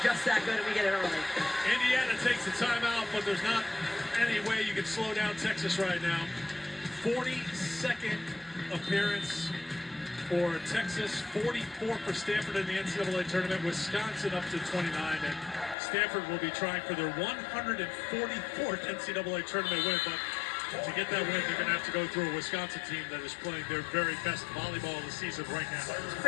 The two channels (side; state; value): right; drops out; at 15.8 s